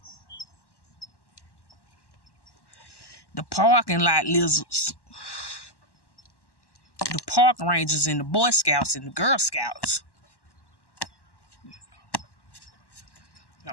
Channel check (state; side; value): late; right; 1.1 ms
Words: The parking lot lizards. The park rangers and the Boy Scouts and the Girl Scouts.